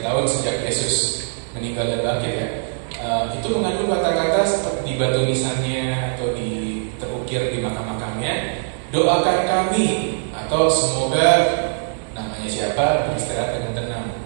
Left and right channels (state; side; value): silent; left; digital silence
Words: tahun sejak Yesus meninggal dan bangkit ya. Itu mengandung kata-kata di batu nisannya atau terukir di makam-makamnya, doakan kami, atau semoga namanya siapa beristirahat dengan tenang.